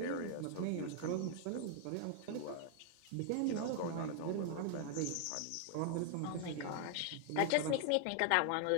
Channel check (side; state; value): both; different; correlation 0.00